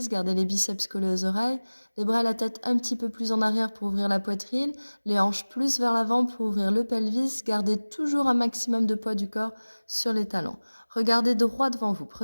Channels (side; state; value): both; inverted; correlation -1.00